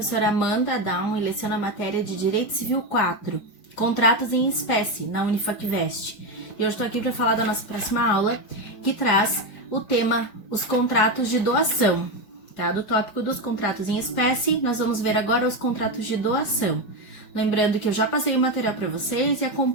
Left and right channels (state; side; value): late; right; 4.9 ms